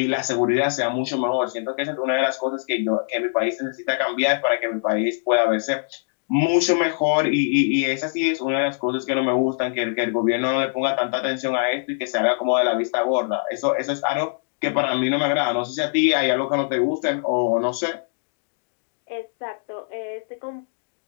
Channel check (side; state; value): right; silent; digital silence